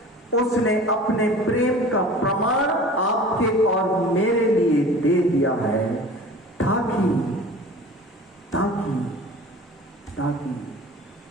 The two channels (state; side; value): normal; both; correlation 0.41